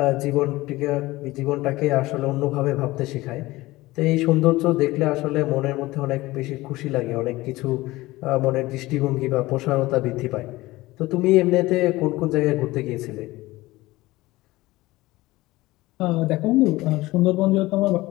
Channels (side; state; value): right; quieter; 19.1 dB